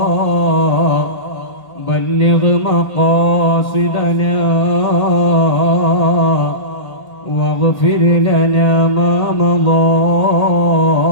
بلغ مقاصدنا واغفر لنا ما مضى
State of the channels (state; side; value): late; right; 1.8 ms